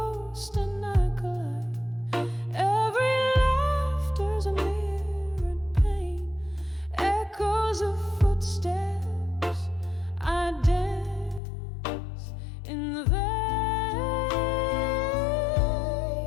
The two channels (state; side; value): drops out; right; at 11.4 s